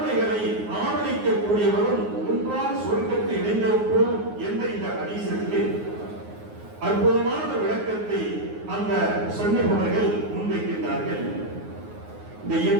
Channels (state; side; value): late; left; 9.6 ms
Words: ஆதரிக்கக்கூடியவரும் ஒன்றாக சொர்க்கத்தை இணைந்திருப்போம் என்ற இந்த ஹதீஸுக்கு அற்புதமான விளக்கத்தை அந்த சொன்னவர்கள் முன்வைக்கின்றார்கள். இந்த